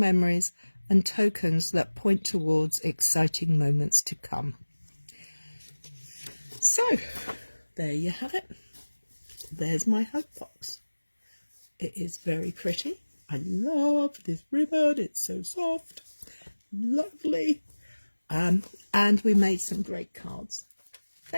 and tokens that point towards exciting moments to come. So, there you have it. There's my hope box. It is very pretty. I love this ribbon. It's so soft. Lovely. And we made some great cards.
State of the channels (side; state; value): both; inverted; correlation -1.00